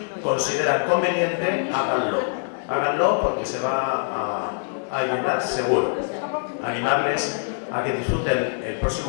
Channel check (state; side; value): silent; right; digital silence